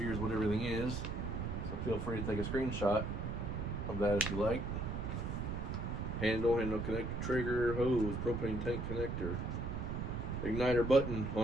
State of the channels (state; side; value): noise; right; rumble, 3 dB below the sound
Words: what everything is. So feel free to take a screenshot of that if you like. Handle connector, trigger, hose, propane tank connector, igniter button